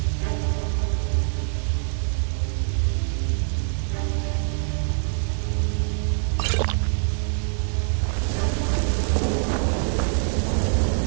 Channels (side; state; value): left; silent; 60 dB below the other